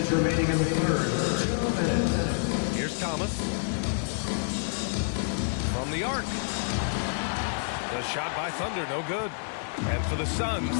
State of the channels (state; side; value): silent; right; digital silence